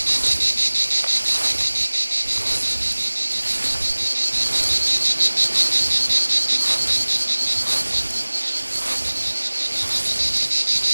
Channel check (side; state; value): both; inverted; correlation -1.00